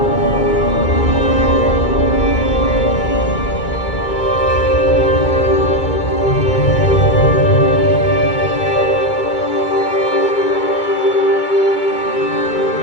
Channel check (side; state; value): right; late; 2.2 ms